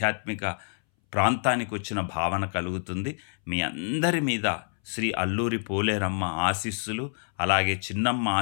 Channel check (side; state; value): right; silent; 60 dB below the other